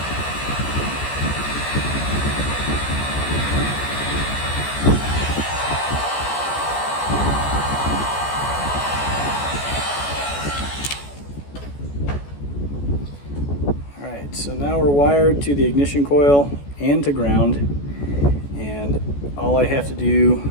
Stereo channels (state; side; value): late; right; 14 ms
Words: So now we're wired to the ignition coil and to ground, and all I have to